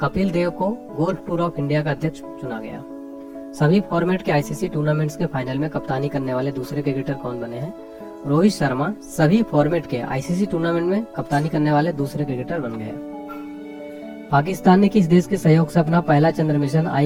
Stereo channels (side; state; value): both; identical; correlation 1.00